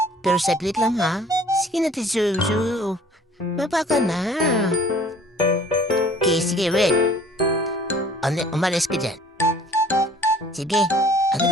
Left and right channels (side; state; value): both; normal; correlation 0.52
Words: Pero saglit lang, ha? Sige na, Ate Zuzu. Baba ka na. Okay, sige, wait. Umalis ka dyan. Sige, ano